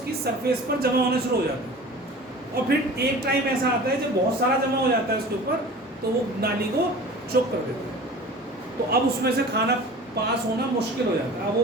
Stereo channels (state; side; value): normal; both; correlation 0.40